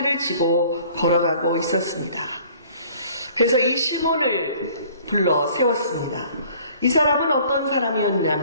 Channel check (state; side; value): inverted; both; correlation -0.53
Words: 지고 걸어가고 있었습니다. 그래서 이 시몬을 불러 세웠습니다. 이 사람은 어떤